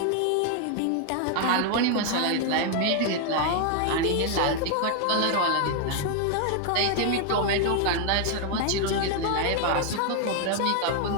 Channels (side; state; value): both; different; correlation 0.00